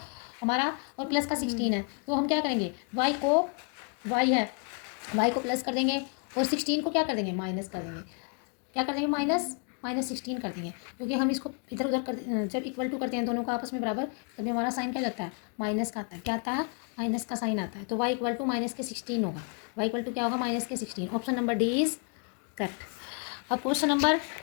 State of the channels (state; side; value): quieter; right; 37.7 dB